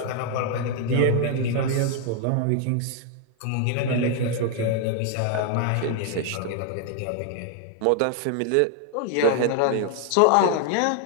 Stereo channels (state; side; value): different; both; correlation 0.00